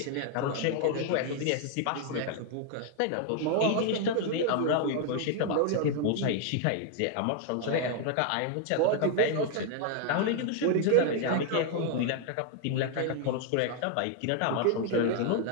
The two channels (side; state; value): both; different; correlation 0.00